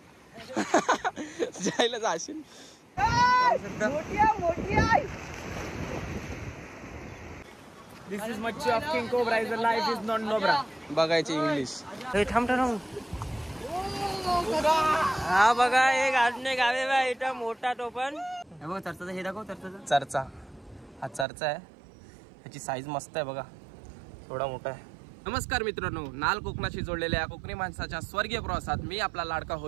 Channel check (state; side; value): drops out; left; at 21.2 s